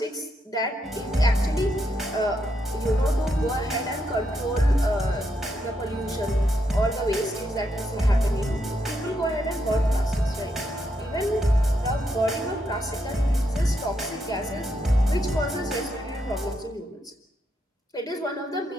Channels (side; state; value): both; normal; correlation 0.80